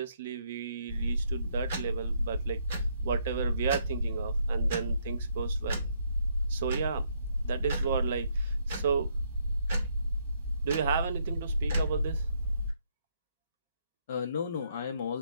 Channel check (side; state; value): both; inverted; correlation -0.73